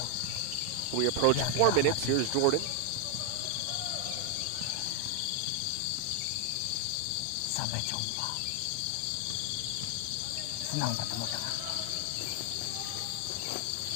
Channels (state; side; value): different; both; correlation 0.00